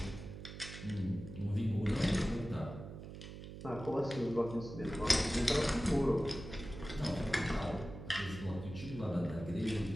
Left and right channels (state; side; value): noise; right; hum, 11 dB below the sound